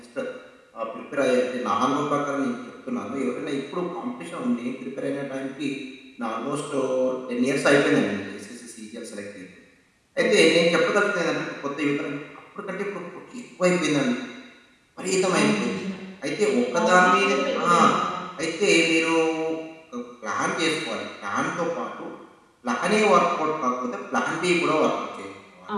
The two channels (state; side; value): identical; both; correlation 1.00